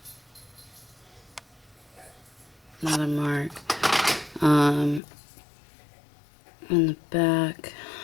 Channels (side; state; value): right; drops out; at 5.0 s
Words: Another mark. In the back,